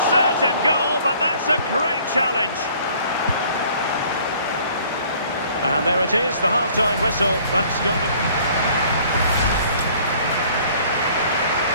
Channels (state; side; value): inverted; both; correlation -0.55